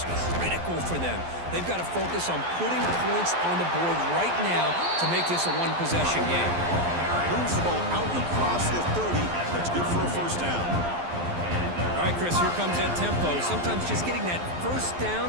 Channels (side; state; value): left; late; 12 ms